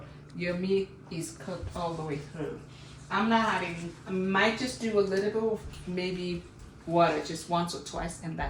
your meat is cooked all the way through. I'm not adding, I might just do a little bit of maybe water just once or twice, and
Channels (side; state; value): both; identical; correlation 1.00